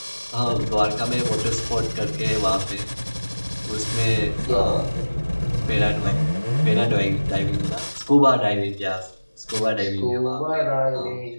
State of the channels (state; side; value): inverted; both; correlation -1.00